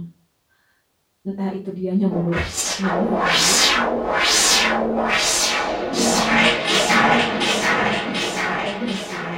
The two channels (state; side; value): identical; both; correlation 1.00